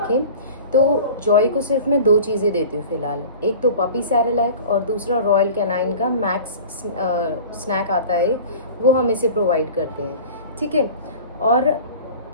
तो जॉय को सिर्फ मैं दो चीज़ें देती हूँ फ़िलहाल। एक तो पपी सैरेलैक और दूसरा रॉयल कैनाइन का मैक्स स्नैक आता है, वो हम इसे प्रोवाइड करते हैं। ठीक है। और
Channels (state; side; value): inverted; both; correlation -0.40